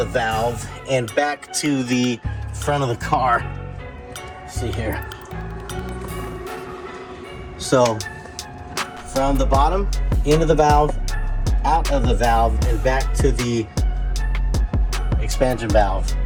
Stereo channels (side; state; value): both; identical; correlation 1.00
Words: valve and back to the front of the car. See here. So from the bottom into the valve, out of the valve, and back to the expansion valve